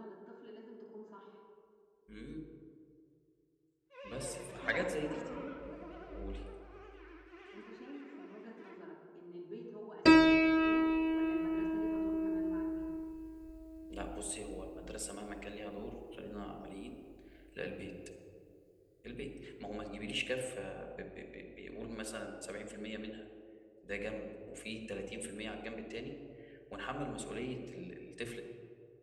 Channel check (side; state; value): both; identical; correlation 1.00